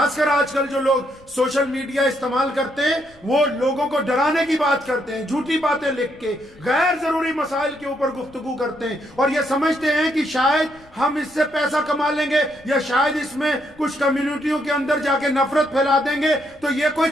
کر آج کل جو لوگ سوشل میڈیا استعمال کرتے ہیں، وہ لوگوں کو ڈرانے کی بات کرتے ہیں، جھوٹی باتیں لکھ کے غیر ضروری مسائل کے اوپر گفتگو کرتے ہیں، اور یہ سمجھتے ہیں کہ شاید ہم اس سے پیسہ کما لیں گے، یا شاید اس میں کچھ کمیونٹیوں کے اندر جا کے نفرت پھیلا دیں گے۔ تو یہ کوئی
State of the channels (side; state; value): left; noise; rumble, 27 dB below the sound